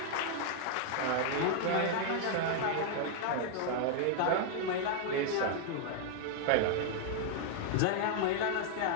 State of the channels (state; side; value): different; both; correlation 0.00